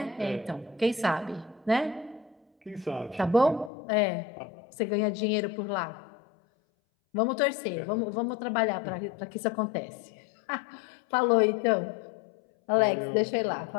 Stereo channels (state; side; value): drops out; right; at 3.7 s